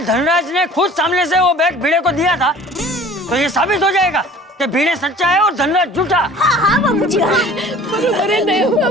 धनराज ने खुद सामने से वो बैग भिड़े को दिया था, तो ये साबित हो जाएगा कि भिड़े सच्चा है और धनराज झूठा। हाँ हाँ बाबूजी, हाँ। बरोबर है दया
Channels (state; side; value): normal; both; correlation 0.46